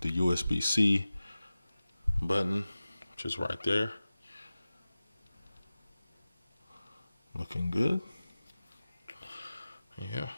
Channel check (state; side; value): inverted; both; correlation -0.96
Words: USB-C button, which is right there. Looking good. Yeah.